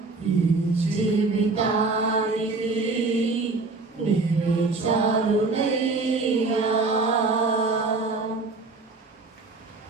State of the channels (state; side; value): quieter; left; 3.8 dB